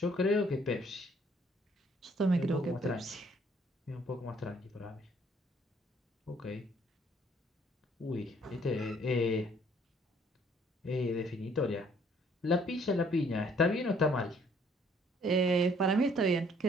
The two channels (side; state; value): both; normal; correlation 0.62